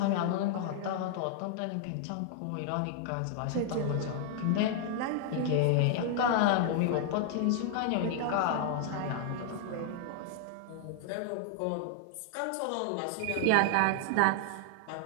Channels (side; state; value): both; different; correlation 0.00